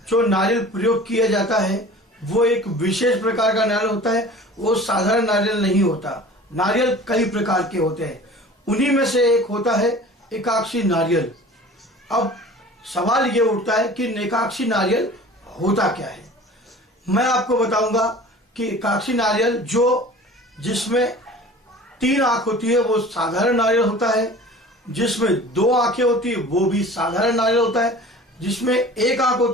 जो नारियल प्रयोग किया जाता है वो एक विशेष प्रकार का नारियल होता है। वो साधारण नारियल नहीं होता। नारियल कई प्रकार के होते हैं, उन्हीं में से एक होता है एकाक्षी नारियल। अब सवाल ये उठता है कि एकाक्षी नारियल होता क्या है। मैं आपको बताऊंगा कि एकाक्षी नारियल जिसमें 3 आंख होती है वो साधारण नारियल होता है, जिसमें 2 आंखें होती है वो भी साधारण नारियल होता है, जिसमें 1 आंख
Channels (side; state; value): both; normal; correlation 0.42